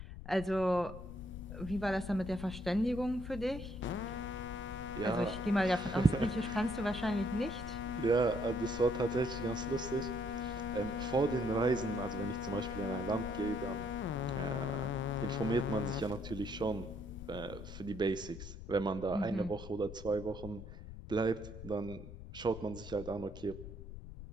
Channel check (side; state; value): left; noise; rumble, 12 dB below the sound